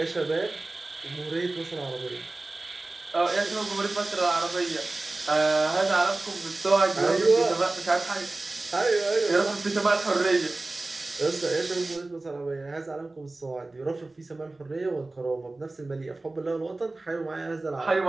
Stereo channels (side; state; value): left; quieter; 3.1 dB